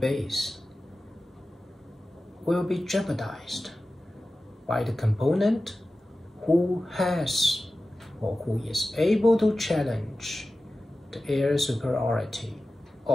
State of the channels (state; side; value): normal; both; correlation 0.95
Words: will be jeopardized by the component who has or who is able to challenge the air superiority